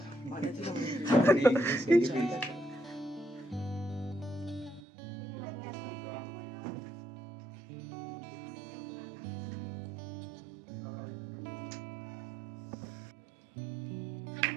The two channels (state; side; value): drops out; left; at 4.8 s